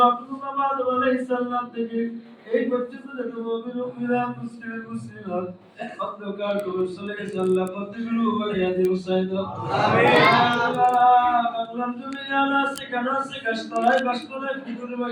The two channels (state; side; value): identical; both; correlation 1.00